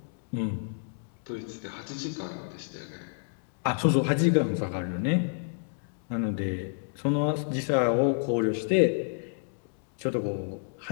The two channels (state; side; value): silent; right; digital silence